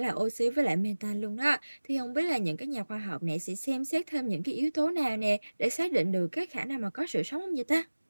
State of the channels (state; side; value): inverted; both; correlation -1.00